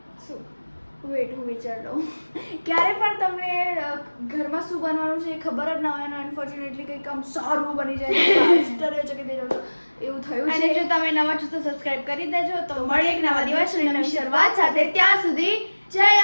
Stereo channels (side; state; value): both; inverted; correlation -1.00